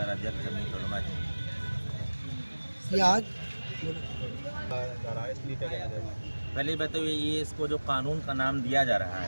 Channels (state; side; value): inverted; both; correlation -1.00